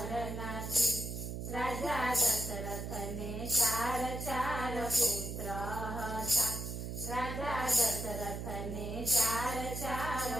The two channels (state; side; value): noise; right; hum, 5 dB below the sound